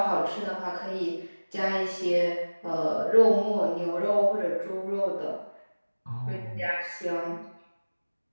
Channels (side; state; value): both; inverted; correlation -1.00